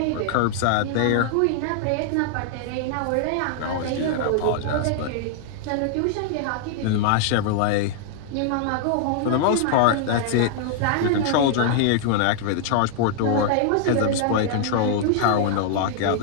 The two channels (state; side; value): different; both; correlation -0.01